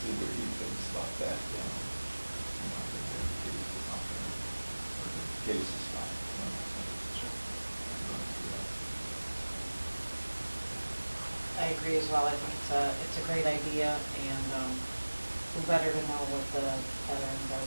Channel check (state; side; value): inverted; both; correlation -1.00